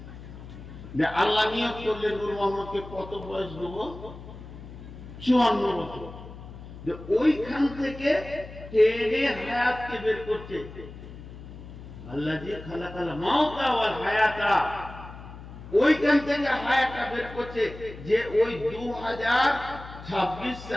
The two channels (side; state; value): left; noise; hum, 14 dB below the sound